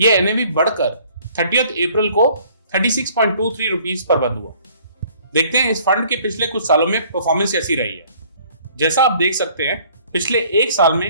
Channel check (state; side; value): inverted; both; correlation -0.57